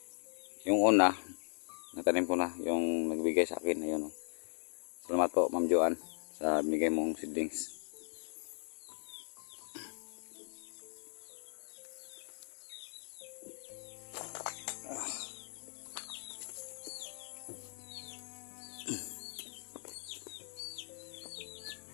Yung una natanim ko na, yung nagbigay sa akin. Ayun, salamat po Ma'am Joanne sa binigay mong seedlings.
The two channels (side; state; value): right; silent; 52 dB below the other